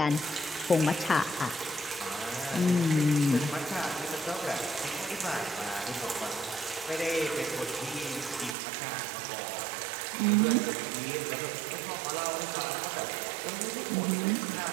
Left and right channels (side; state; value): left; drops out; at 8.6 s